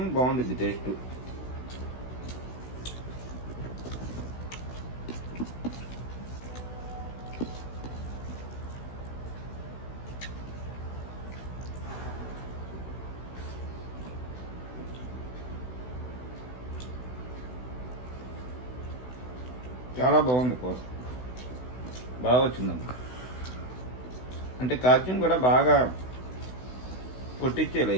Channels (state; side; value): late; right; 16 ms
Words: బాగుండిద్ది టేస్ట్. చాలా బాగుంది కూర, బాగా వచ్చిందమ్మా. అంటే కాల్చియం కూడా బాగా కొట్టించేలా,